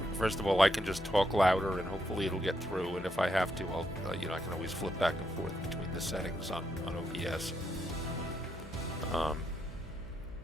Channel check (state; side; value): noise; left; hum, 17 dB below the sound